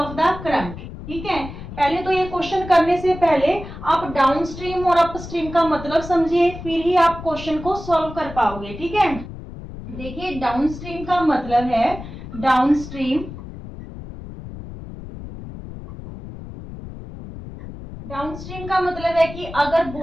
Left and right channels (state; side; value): noise; left; rumble, 12 dB below the sound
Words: the current, ठीक है। पहले तो ये क्वेश्चन करने से पहले आप डाउनस्ट्रीम और अपस्ट्रीम का मतलब समझिए, फिर ही आप क्वेश्चन को सॉल्व कर पाओगे, ठीक है। देखिए, डाउनस्ट्रीम का मतलब है डाउनस्ट्रीम डाउनस्ट्रीम का मतलब है कि अगर